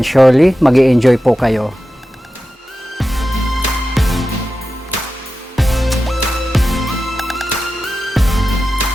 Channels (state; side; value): normal; both; correlation 0.93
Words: surely mag-i-enjoy po kayo.